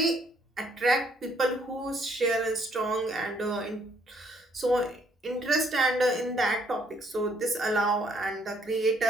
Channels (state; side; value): normal; both; correlation 0.67